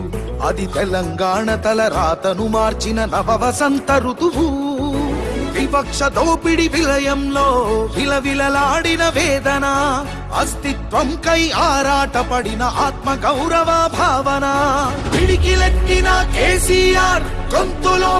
అది తెలంగాణ తల రాతను మార్చిన నవవసంత ఋతువు. వివక్ష దోపిడి విలయంలో విలవిలలాడిన వేదన, అస్తిత్వం కై ఆరాటపడిన ఆత్మ గౌరవ భావన. పిడికిలెత్తిన కేసీఆర్ గొంతులో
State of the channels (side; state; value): both; identical; correlation 1.00